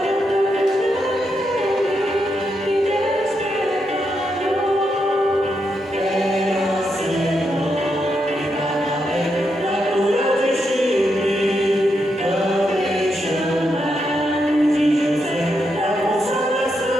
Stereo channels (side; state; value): both; normal; correlation 0.82